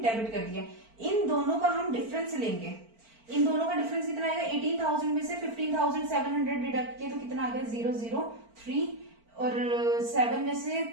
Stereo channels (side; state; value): left; late; 4.4 ms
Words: डेबिट कर दिया। इन दोनों का हम डिफरेंस लेंगे। इन दोनों का डिफरेंस कितना आएगा, 18000 में से 15700 डिडक्ट किया तो कितना आ गया 003, और 7 में से